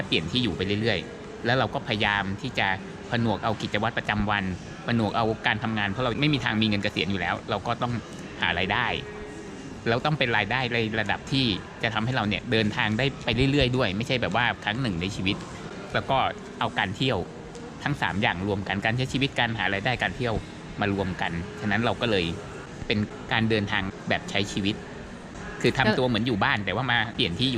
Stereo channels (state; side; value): identical; both; correlation 1.00